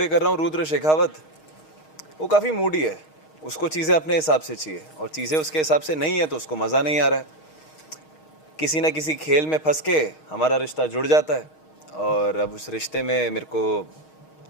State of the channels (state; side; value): late; right; 6.4 ms